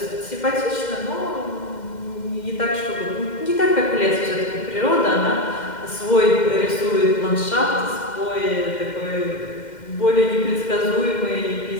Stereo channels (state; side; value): late; right; 2.1 ms